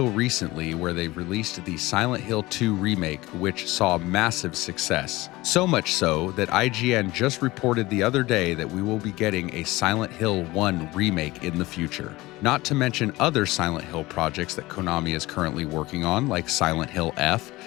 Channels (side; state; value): right; quieter; 20.0 dB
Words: recently, where they released the Silent Hill 2 remake, which saw massive success. So much so that IGN just reported the other day that we will be getting a Silent Hill 1 remake in the future. Not to mention other Silent Hill projects that Konami is currently working on, like Silent Hill F,